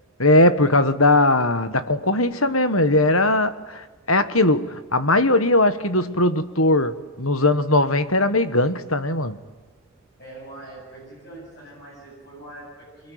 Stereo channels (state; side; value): normal; both; correlation -0.17